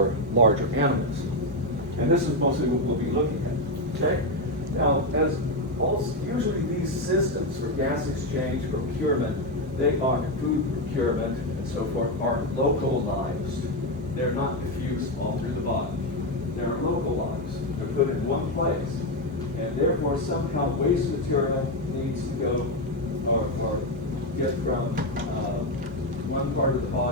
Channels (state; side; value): normal; both; correlation 0.08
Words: larger animals. And this is mostly what we'll be looking at. Okay? Now, usually these systems for gas exchange, procurement, they are food procurement and so forth, are localized. They're not diffused all through the body. They're localized. They're put in one place. And therefore, somehow waste material needs to go or get from one part of the